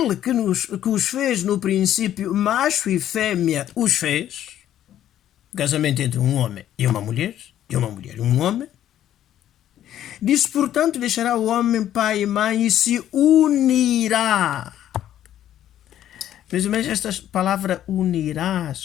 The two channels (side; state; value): right; quieter; 11.5 dB